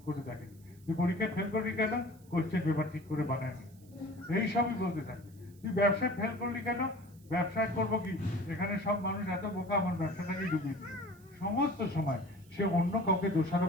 করে দেখেনি, তুই পরীক্ষায় ফেল করি কেন, কোশ্চেন পেপার ঠিক করে বানায়নি, এইসবই বলতে থাকে। তুই ব্যবসায় ফেল করলি কেন, ব্যবসায় করবো কি, এখানে সব মানুষ এত বোকা, আমার ব্যবসাটাকে ডুবিয়ে দিল। সমস্ত সময় সে অন্য কাউকে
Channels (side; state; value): right; noise; hiss, 28 dB below the sound